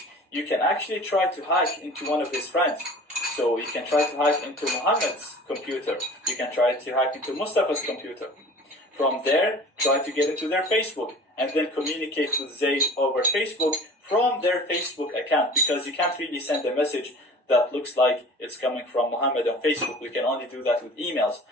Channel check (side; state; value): both; normal; correlation 0.43